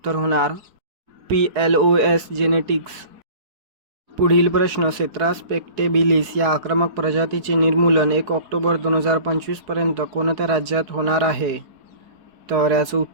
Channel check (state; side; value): late; left; 4.7 ms